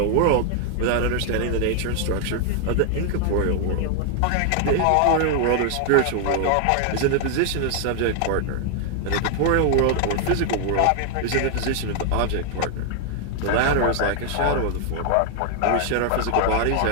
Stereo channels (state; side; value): different; both; correlation 0.00